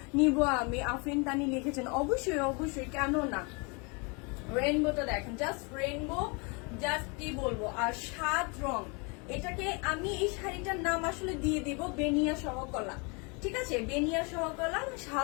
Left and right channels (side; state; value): right; quieter; 31.9 dB